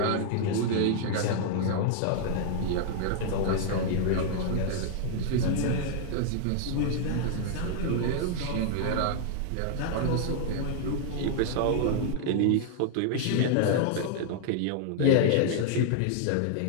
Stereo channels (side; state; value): both; different; correlation -0.01